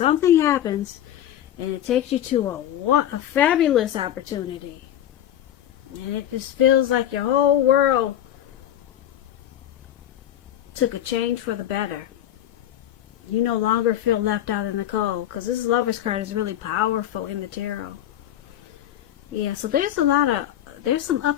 happens, and it takes you to a fabulous opportunity. And it just feels like your whole world took a change for the better. You no longer feel left out in the cold, because this Lover's card is really powerful in the tarot. Yeah, so there's some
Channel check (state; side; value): quieter; right; 11.6 dB